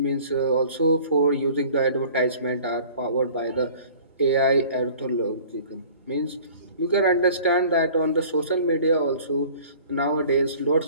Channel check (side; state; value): both; inverted; correlation -0.48